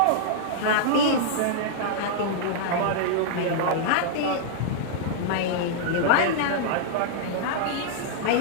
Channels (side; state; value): both; different; correlation -0.02